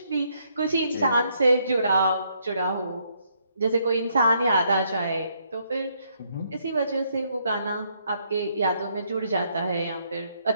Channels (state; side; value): inverted; both; correlation -0.72